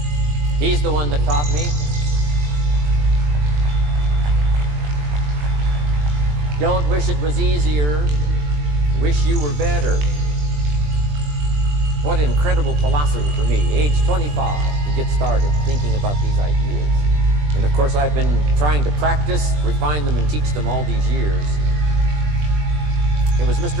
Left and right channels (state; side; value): late; left; 20 ms